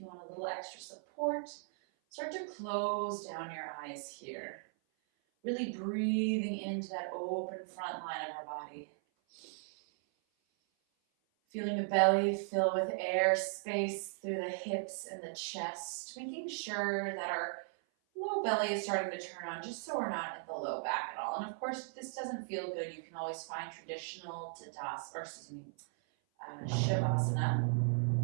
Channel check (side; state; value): left; silent; 53 dB below the other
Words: want a little extra support. Start to close down your eyes here. Really breathing into that open front line of our body. Feeling the belly fill with air, space through the hips and the chest. Making sure that our low belly is starting to turn on, just so we're not in the low back at all. And of course, if this doesn't feel good, you can always find traditional Shavasana.